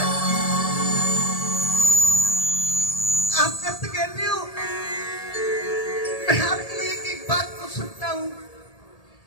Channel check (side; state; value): right; late; 1.7 ms